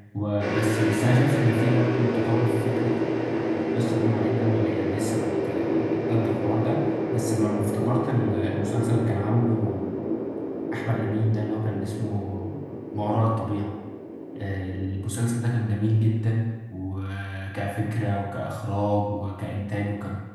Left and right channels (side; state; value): both; identical; correlation 1.00